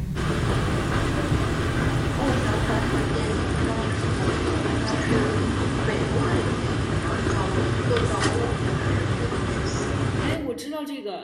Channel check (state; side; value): identical; both; correlation 1.00